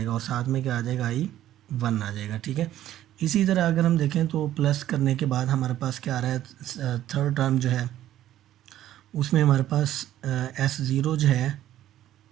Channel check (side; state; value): left; quieter; 12.8 dB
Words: और साथ में क्या आ जाएगा, I1 आ जाएगा। ठीक है, इसी तरह अगर हम देखें तो प्लस करने के बाद हमारे पास क्या आ रहा है, थर्ड टर्म जो है उसमें हमारे पास S0 जो है,